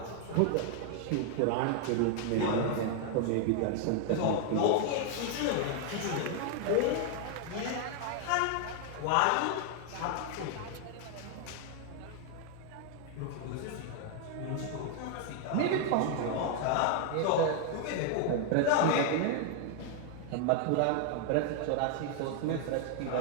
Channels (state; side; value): different; both; correlation 0.00